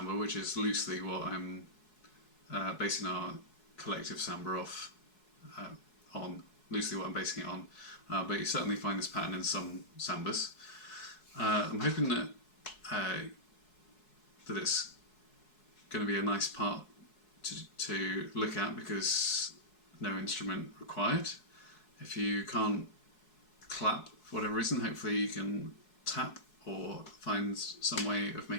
which is loosely what I'm basing our collective Samba off on. Loosely what I'm basing it on. But you certainly find this pattern in some Sambas. I'm hoping that that it's going to be a nice part to look at because no instrument required. If you can't clap for whatever reason, hopefully you can tap or find some way of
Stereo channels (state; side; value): late; right; 4.7 ms